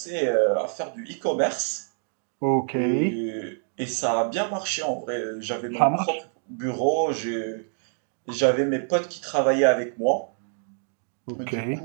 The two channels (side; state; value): left; silent; digital silence